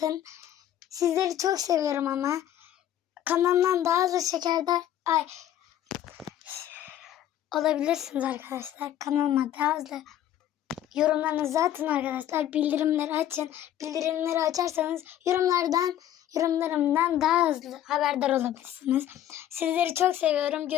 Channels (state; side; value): quieter; right; 11.7 dB